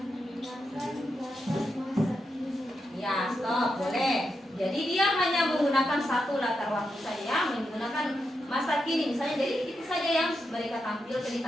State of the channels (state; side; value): normal; both; correlation 0.86